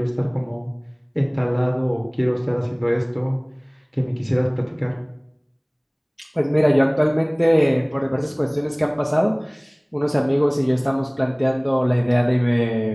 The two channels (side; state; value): both; identical; correlation 1.00